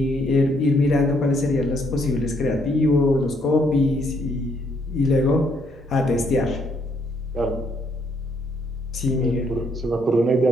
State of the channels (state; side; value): noise; right; hum, 30 dB below the sound